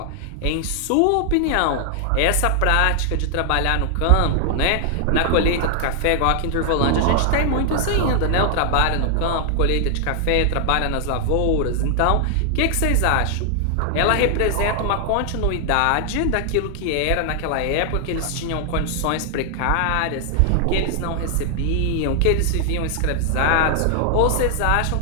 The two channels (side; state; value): both; different; correlation 0.00